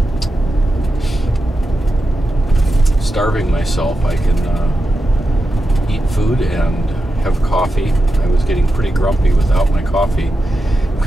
starving myself. I can eat food and have coffee. I was getting pretty grumpy without my coffee. I'm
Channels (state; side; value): normal; both; correlation 0.89